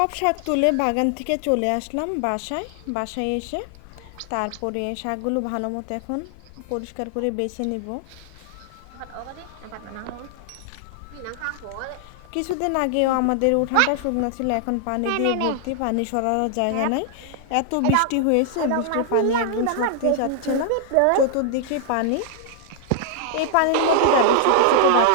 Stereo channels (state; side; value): different; both; correlation 0.00